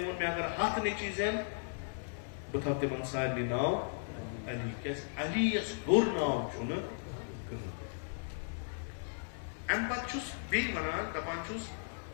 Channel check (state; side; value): silent; right; digital silence